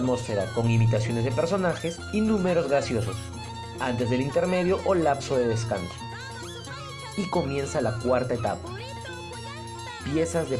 con imitaciones de personajes y números graciosos, antes del intermedio o lapso de descanso. Y comienza la cuarta etapa, piezas de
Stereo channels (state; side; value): identical; both; correlation 1.00